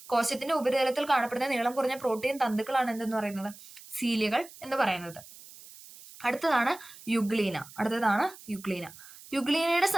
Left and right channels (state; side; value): noise; right; hiss, 19 dB below the sound